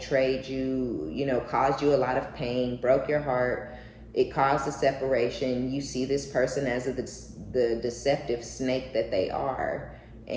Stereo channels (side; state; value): both; identical; correlation 1.00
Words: you, you know, caused you a lot of pain, broke your heart. It caused a separation. You see this person as the deceptive snake that they are.